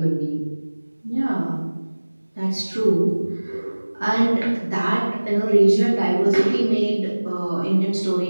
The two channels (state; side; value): inverted; both; correlation -1.00